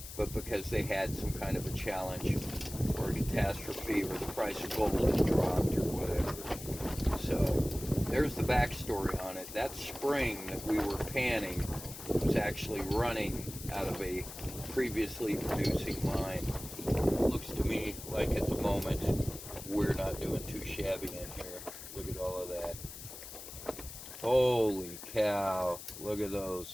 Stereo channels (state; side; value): noise; left; hiss, 12 dB below the sound